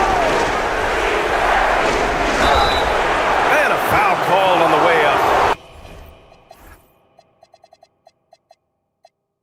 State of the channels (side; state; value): both; identical; correlation 1.00